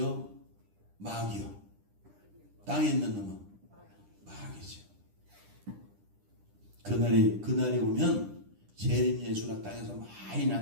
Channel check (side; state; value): left; late; 10 ms